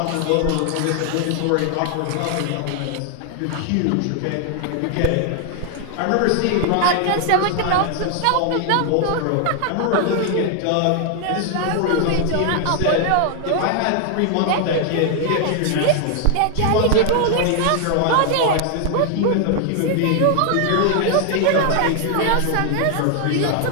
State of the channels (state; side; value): different; both; correlation 0.00